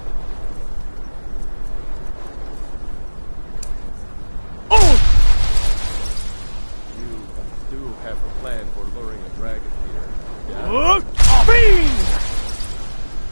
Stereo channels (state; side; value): inverted; both; correlation -1.00